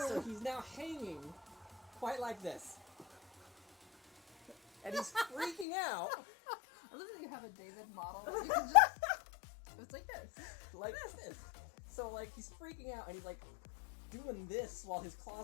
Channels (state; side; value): drops out; right; at 5.7 s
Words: So he's now hanging quite like this. And he's freaking out. I love that you have a David model. You can just... It's like this. Like this. So like he's freaking out and he's like doing this while his